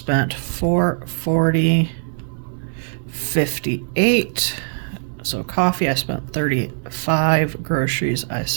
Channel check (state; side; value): silent; left; digital silence